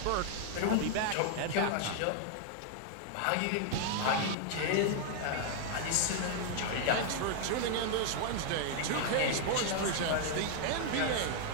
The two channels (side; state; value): both; different; correlation 0.00